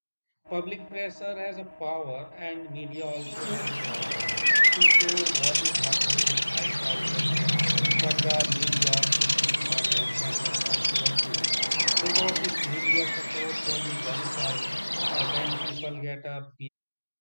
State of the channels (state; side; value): inverted; both; correlation -1.00